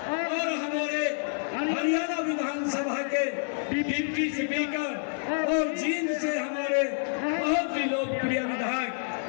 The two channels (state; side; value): silent; right; digital silence